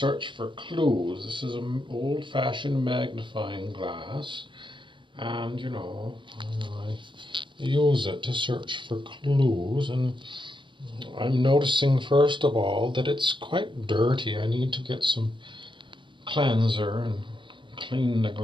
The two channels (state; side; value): late; left; 0.24 ms